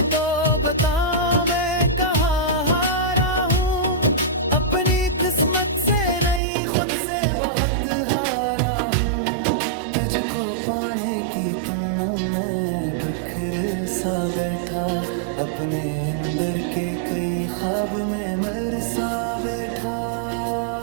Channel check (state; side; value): drops out; left; at 6.4 s